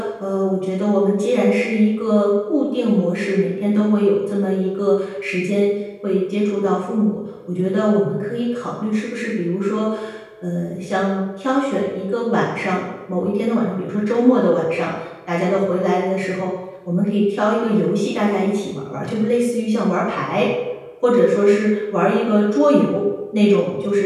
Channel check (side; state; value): both; identical; correlation 1.00